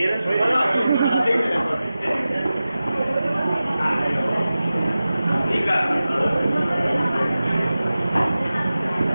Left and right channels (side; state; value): both; inverted; correlation -0.95